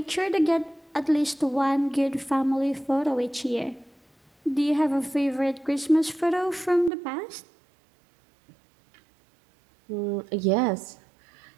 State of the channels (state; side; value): drops out; left; at 6.9 s